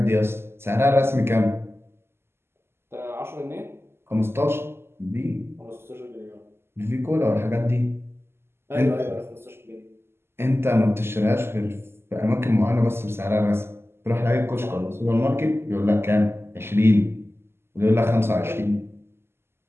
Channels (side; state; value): left; late; 0.12 ms